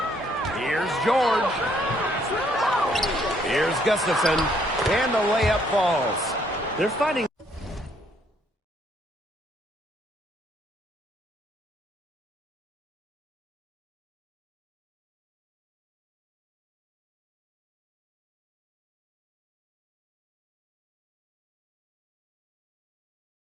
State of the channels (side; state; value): both; normal; correlation 0.68